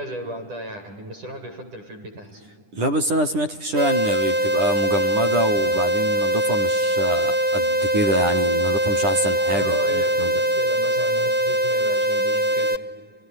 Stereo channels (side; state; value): left; late; 10 ms